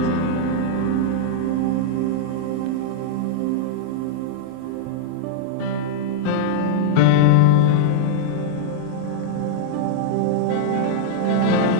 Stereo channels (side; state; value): both; different; correlation -0.01